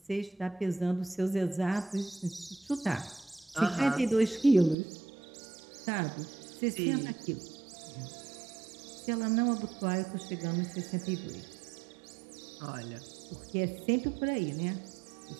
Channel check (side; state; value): left; drops out; at 4.8 s